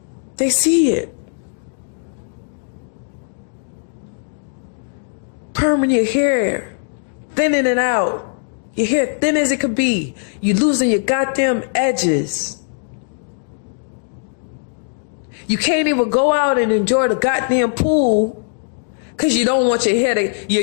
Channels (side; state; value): right; silent; digital silence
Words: They see it. Perming your hair, thinning it out. Your hair thin as it could be. You losing your goddamn edges. You can't even go out and enjoy the goddamn pool because you don't want your hair to,